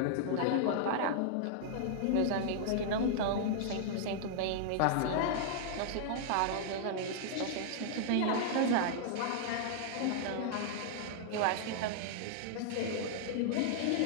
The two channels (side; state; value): both; different; correlation -0.01